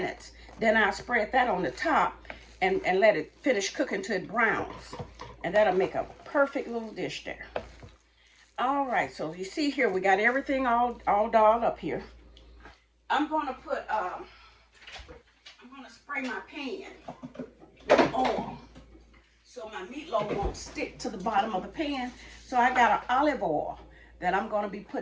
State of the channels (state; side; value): identical; both; correlation 1.00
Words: Then I'll spread that on the top and let it finish cooking till it browns. And that'll make a perfect little dish there. All right, so you see here, we got everything all dolled up here. I'm gonna put, I'm gonna spray my pan with oil so my meatloaf won't stick to the bottom of the pan. So I got an olive oil that I'm gonna be